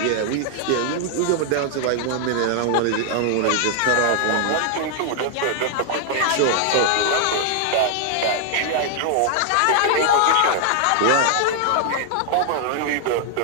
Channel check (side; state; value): both; different; correlation 0.00